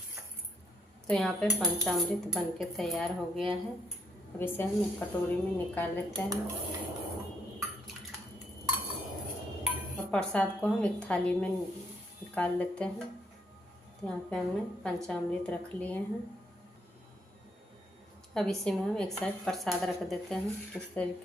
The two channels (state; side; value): normal; both; correlation 0.74